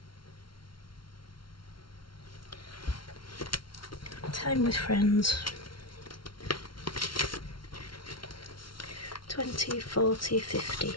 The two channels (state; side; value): late; right; 0.73 ms